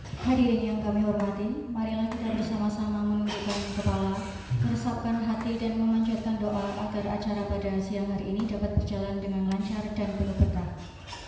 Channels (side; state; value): both; identical; correlation 1.00